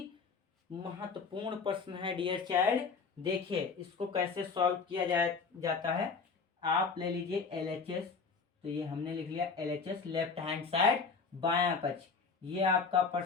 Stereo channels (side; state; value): right; quieter; 5.0 dB